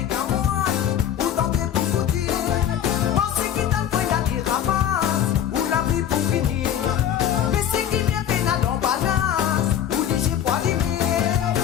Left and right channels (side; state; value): right; quieter; 10.0 dB